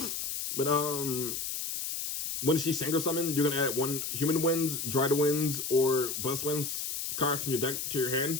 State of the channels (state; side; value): noise; left; hiss, 4 dB below the sound